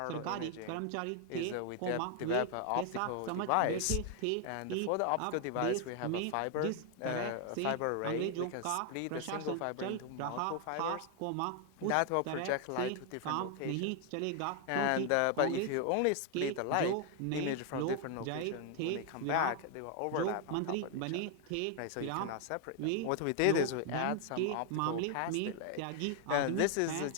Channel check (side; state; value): both; different; correlation 0.00